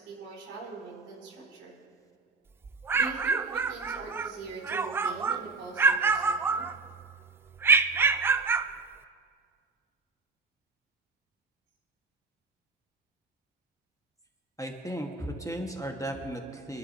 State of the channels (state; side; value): quieter; left; 4.2 dB